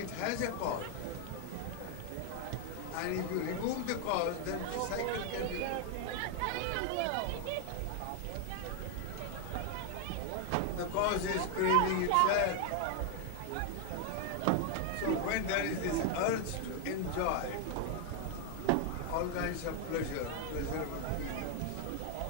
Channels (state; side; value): different; both; correlation 0.00